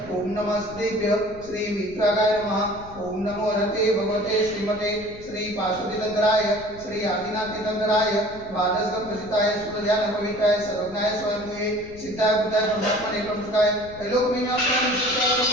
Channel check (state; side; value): noise; left; rumble, 18 dB below the sound